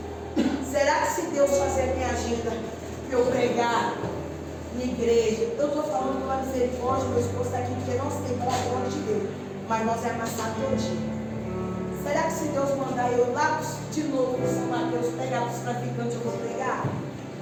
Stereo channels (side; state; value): both; identical; correlation 1.00